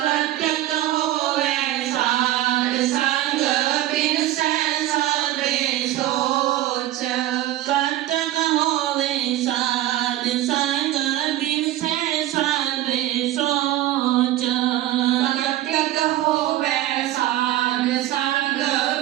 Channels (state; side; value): quieter; left; 14.5 dB